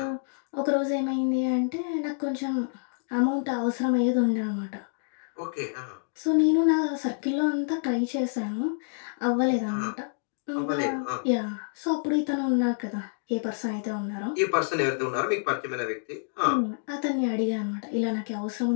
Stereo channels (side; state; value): right; silent; digital silence